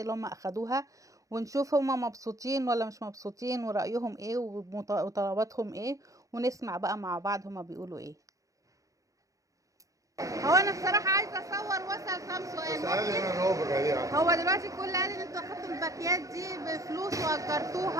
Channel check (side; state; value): left; late; 0.16 ms